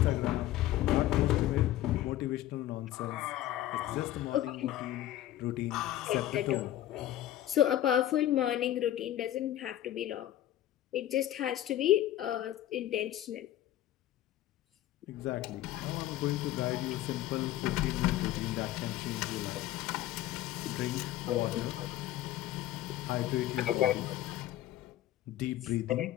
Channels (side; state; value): right; quieter; 13.6 dB